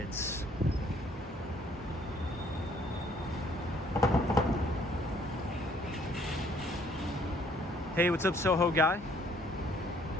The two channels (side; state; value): both; normal; correlation 0.62